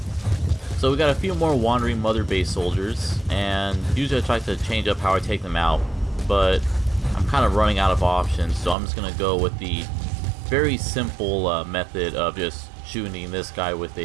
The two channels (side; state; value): left; drops out; at 8.8 s